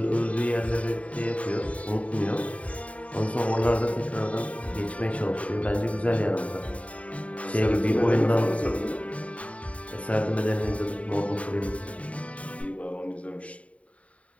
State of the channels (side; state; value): right; late; 0.066 ms